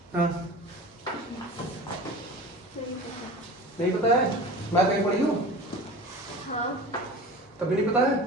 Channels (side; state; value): both; normal; correlation 0.36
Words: हाँ नहीं पता है? मैथ कहीं पढ़ी हो? हाँ तभी नहीं पता है?